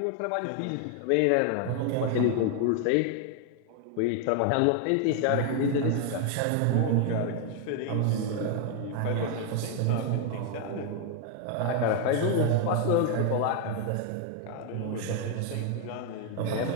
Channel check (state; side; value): different; both; correlation 0.00